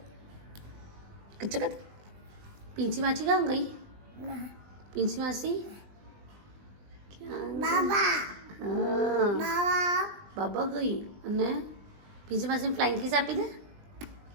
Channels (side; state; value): left; late; 20 ms